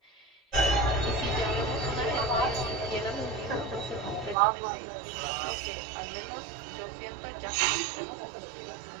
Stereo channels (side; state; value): left; drops out; at 4.4 s